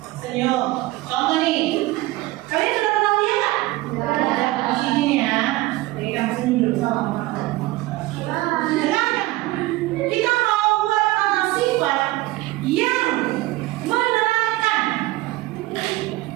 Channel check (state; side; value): quieter; left; 19.0 dB